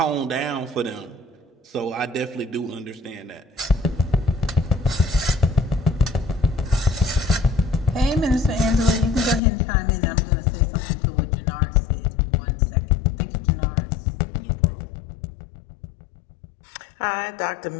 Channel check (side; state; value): right; drops out; at 9.4 s